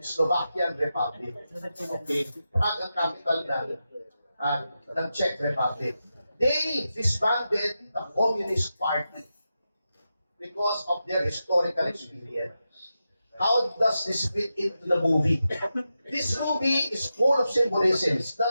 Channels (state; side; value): inverted; both; correlation -0.89